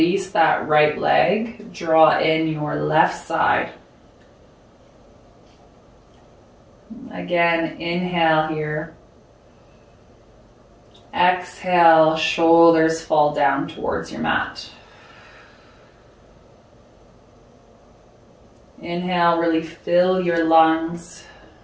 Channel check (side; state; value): both; identical; correlation 1.00